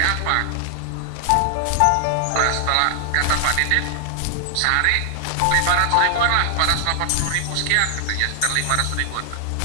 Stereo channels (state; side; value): different; both; correlation 0.00